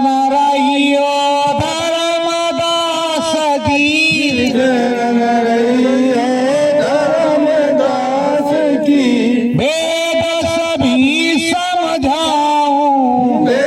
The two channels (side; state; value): both; identical; correlation 1.00